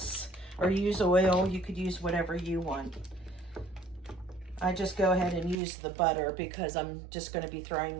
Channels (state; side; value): drops out; left; at 5.6 s